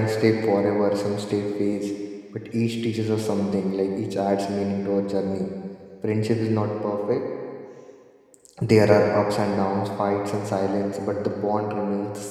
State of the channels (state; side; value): identical; both; correlation 1.00